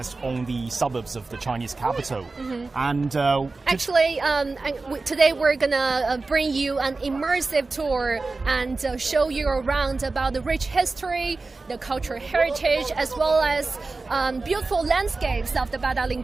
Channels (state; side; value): quieter; left; 3.7 dB